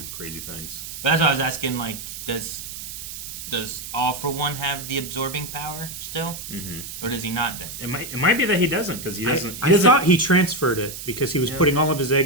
crazy things. But that's why I was asking, like, does All for One have the absorbing power still? Mm-hmm. Or does he not then? It might be that he doesn't because he doesn't. I thought he transferred it because he was Yeah. putting all of his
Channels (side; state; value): right; noise; hiss, 9 dB below the sound